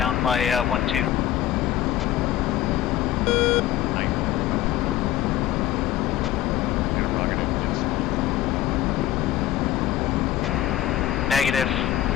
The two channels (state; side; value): quieter; right; 13.0 dB